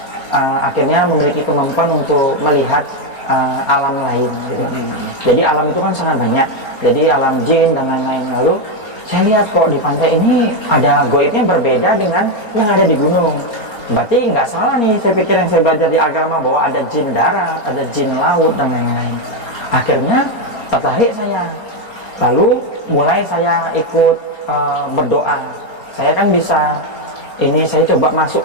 akhirnya memiliki kemampuan untuk melihat alam lain gitu. Jadi alam itu kan sangat banyak, jadi alam jin dan lain-lain. Lalu saya lihat kok di pantai ini ada goibnya berbeda dengan yang ada di gunung. Berarti nggak salah nih, saya pikir yang saya belajar di agama bahwa ada jin darat, ada jin laut dan lain-lain. Akhirnya tertarik saya, lalu mulai saya ikut berdoa. Saya kan bisa, ini saya coba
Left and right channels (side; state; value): right; late; 4.3 ms